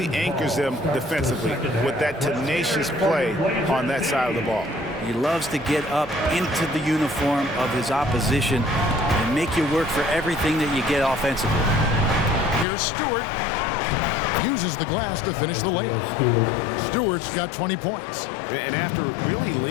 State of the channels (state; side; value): drops out; right; at 12.7 s